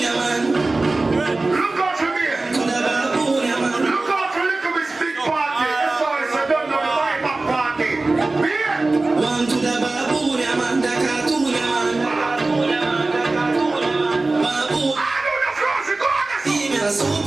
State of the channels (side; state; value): left; quieter; 3.2 dB